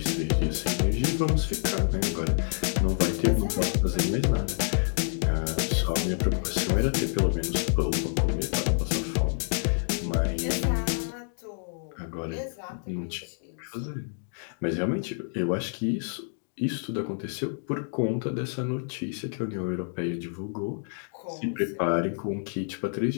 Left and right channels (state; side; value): silent; right; digital silence